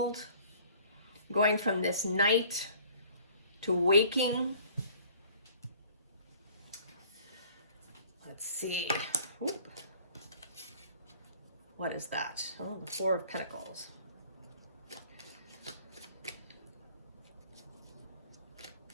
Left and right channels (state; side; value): inverted; both; correlation -0.52